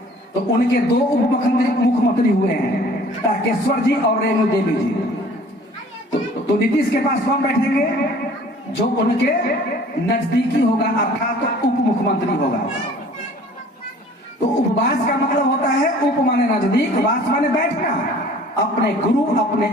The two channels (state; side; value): normal; both; correlation 0.50